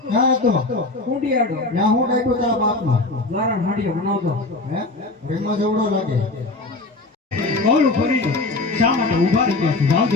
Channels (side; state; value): right; quieter; 3.1 dB